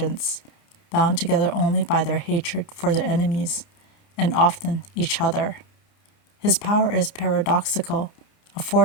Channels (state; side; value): late; right; 29 ms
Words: bound together only by their hatred for their enemies, and often each other. His power is paradoxical, a